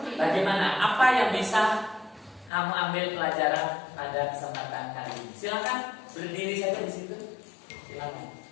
bagaimana apa yang bisa kamu ambil pelajaran pada kesempatan kali ini. Silakan berdiri saja di situ. Silakan.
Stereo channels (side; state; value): right; drops out; at 2.5 s